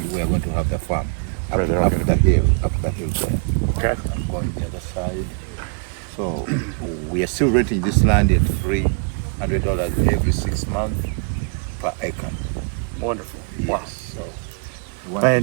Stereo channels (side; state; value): left; quieter; 37.4 dB